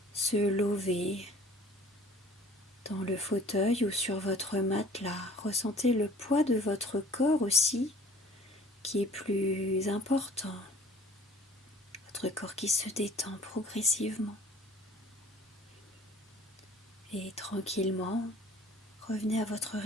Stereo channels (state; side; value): normal; both; correlation 0.49